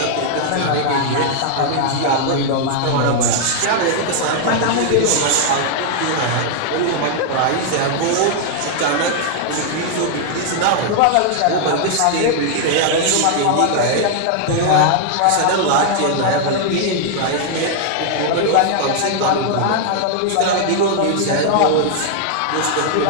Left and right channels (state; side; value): different; both; correlation 0.00